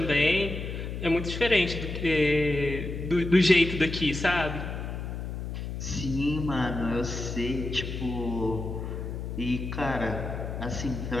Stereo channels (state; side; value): noise; left; hum, 6 dB below the sound